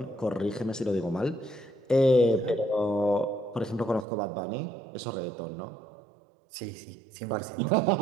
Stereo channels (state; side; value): drops out; left; at 4.0 s